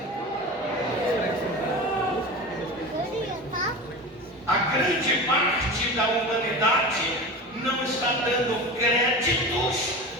A grande parte da humanidade não está dando créditos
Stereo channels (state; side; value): normal; both; correlation 0.30